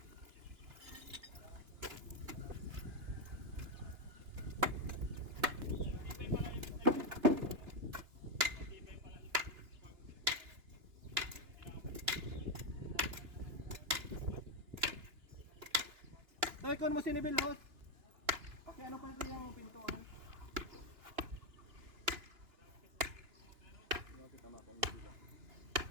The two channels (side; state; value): left; late; 2.9 ms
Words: Tay, kung mo sinibil, host. Okay, ano pa ito yung pintuan?